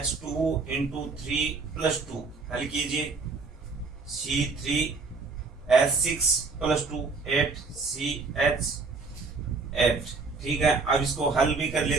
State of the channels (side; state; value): left; quieter; 4.2 dB